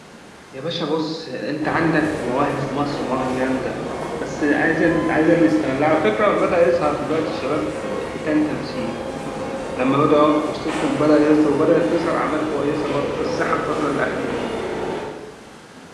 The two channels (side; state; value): both; identical; correlation 1.00